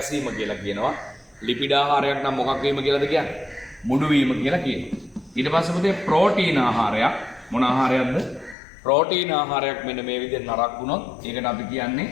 කියලා කියනවා. ලිපිඩ ආහාරයක් නම් මොකක් වීම කියලාද කියන්නේ? මුඩු වීම කියලා කියනවා. ඊට පස්සේ පුතේ ප්‍රෝටීන ආහාරයක් මොන ආහාරයක්ද? ප්‍රෝටීන ආහාරයක් මෙන්න මේ විදිහට නරක් වුණොත් ඒකට අපි කියන්නේ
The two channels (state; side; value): drops out; right; at 8.6 s